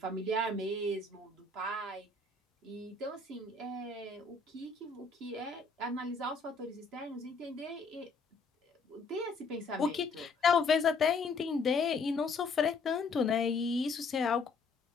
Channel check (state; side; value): quieter; right; 4.0 dB